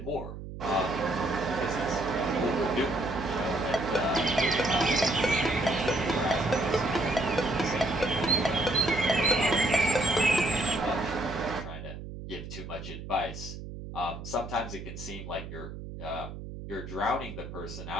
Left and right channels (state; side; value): noise; right; hum, 10 dB below the sound